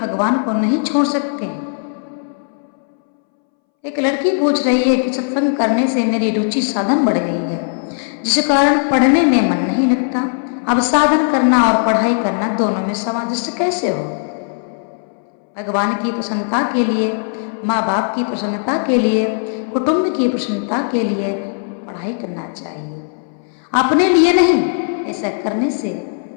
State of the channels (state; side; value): silent; right; 65 dB below the other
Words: को नहीं छोड़ सकते। एक लड़की पूछ रही है कि सत्संग करने से मेरी रुचि साधन बढ़ गई है, जिस कारण पढ़ने में मन नहीं लगता। अब साधन करना और पढ़ाई करना दोनों में सामंजस्य कैसे हो? भगवान की प्रसन्नता के लिए, माँ बाप की प्रसन्नता के लिए, कुटुंब की प्रसन्नता के लिए पढ़ाई करना चाहिए, अपने लिए नहीं। ऐसा करने से